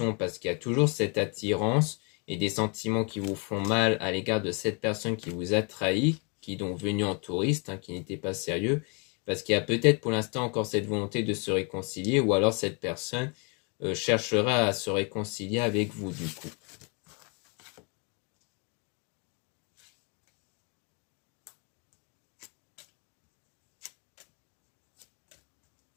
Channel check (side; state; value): right; quieter; 34.1 dB